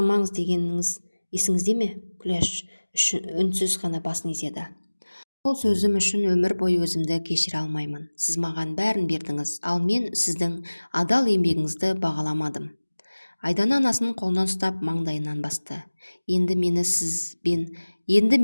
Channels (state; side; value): inverted; both; correlation -1.00